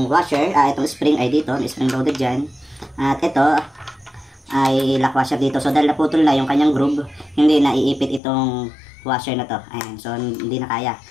washer, itong spring ay dito, spring loaded dyan. At ito ay lock washer dito. So dahil naputol na yung kanyang groove, hindi na iipit itong washer na to. Ayan, so hindi na kaya.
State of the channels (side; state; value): right; drops out; at 8.2 s